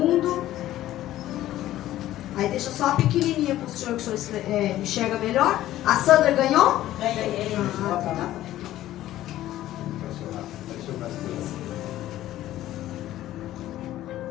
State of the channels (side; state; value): right; quieter; 14.1 dB